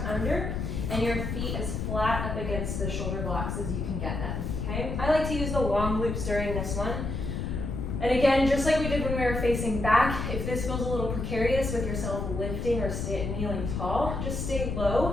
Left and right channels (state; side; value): noise; left; rumble, 3 dB below the sound